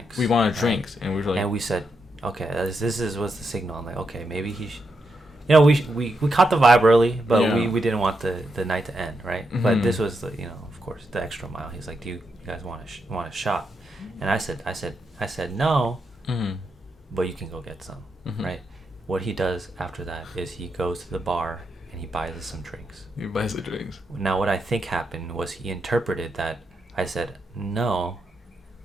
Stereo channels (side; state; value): both; normal; correlation 0.84